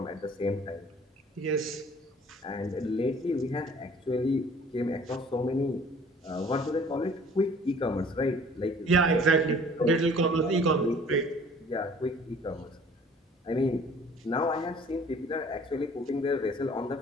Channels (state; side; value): normal; both; correlation 0.52